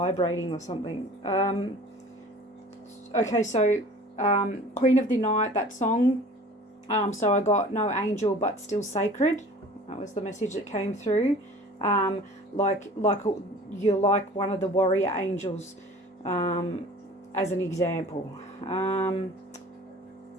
or something. Okay, so Queen of the Night, that song. So I got no angel but still sacred. That was the message that came through. Like you're like one of the warrior angels, as an example.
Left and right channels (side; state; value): both; normal; correlation 0.45